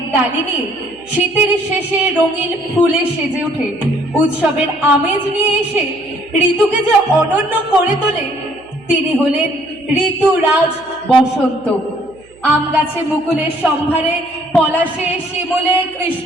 ডালিনী শীতের শেষে রঙিন ফুলে সেজে ওঠে। উৎসবের আমেজ নিয়ে এসে ঋতুকে যে অনন্য করে তোলে তিনি হলেন ঋতুরাজ বসন্ত। আম গাছে মুকুলের সম্ভারে, পলাশে শিমুলে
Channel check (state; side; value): noise; right; hum, 29 dB below the sound